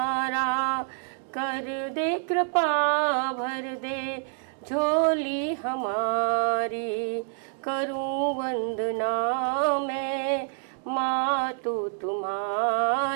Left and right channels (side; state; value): left; silent; 60 dB below the other